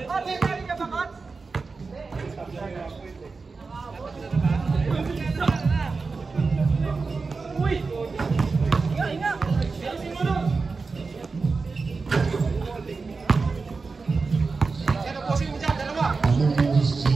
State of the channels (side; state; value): left; quieter; 4.3 dB